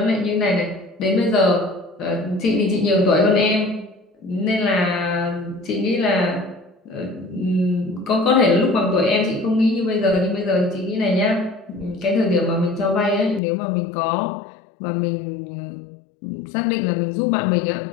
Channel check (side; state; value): right; drops out; at 13.4 s